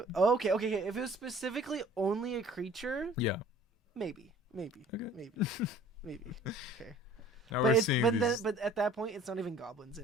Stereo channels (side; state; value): both; normal; correlation 0.51